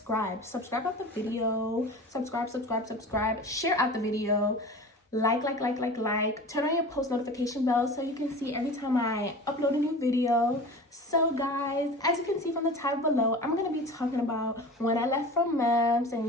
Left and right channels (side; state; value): both; normal; correlation 0.36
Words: Subscribe out the video. Subscribe. Share out the video. Like. Turn on your post notification bell so you can see every time I upload a new video. So guys, as you can see from the title below, I'm going to be talking about when I left from MEMS